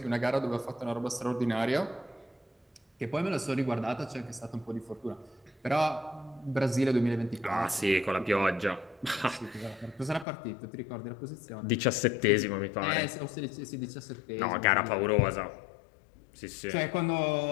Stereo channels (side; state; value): right; drops out; at 10.2 s